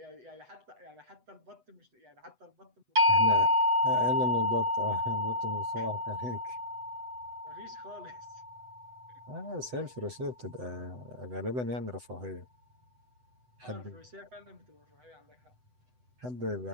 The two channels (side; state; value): left; late; 8.0 ms